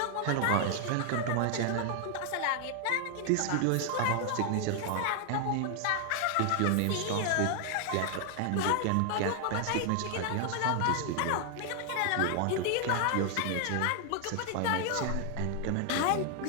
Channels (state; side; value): different; both; correlation 0.00